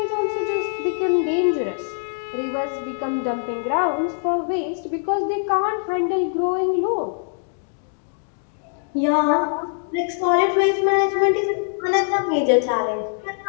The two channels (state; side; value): silent; right; digital silence